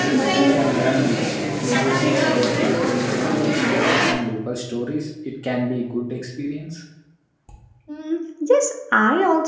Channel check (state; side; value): identical; both; correlation 1.00